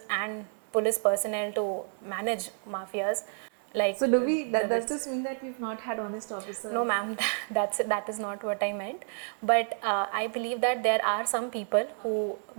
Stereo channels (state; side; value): silent; left; 58 dB below the other